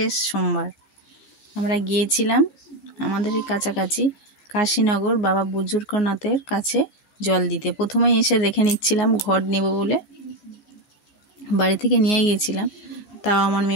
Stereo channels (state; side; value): late; right; 15 ms